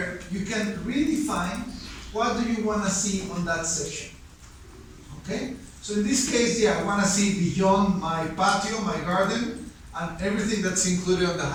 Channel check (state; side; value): identical; both; correlation 1.00